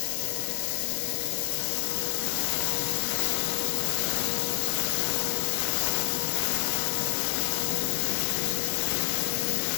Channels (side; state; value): right; silent; digital silence